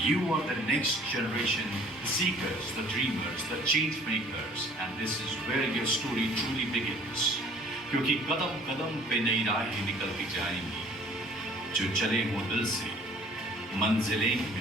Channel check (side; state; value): both; normal; correlation 0.54